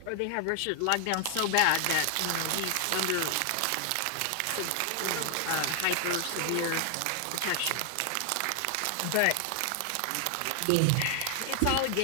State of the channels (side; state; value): both; different; correlation 0.00